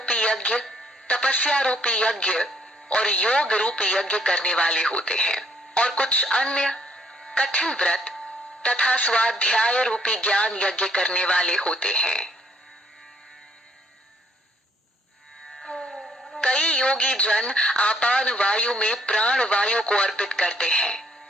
यज्ञ, तपस्या रूपी यज्ञ और योग रूपी यज्ञ करने वाले होते हैं, और कुछ अन्य कठिन व्रत तथा स्वाध्याय रूपी ज्ञान यज्ञ करने वाले होते हैं। कई योगी जन आपान वायु में प्राण वायु को अर्पित करते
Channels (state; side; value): normal; both; correlation 0.66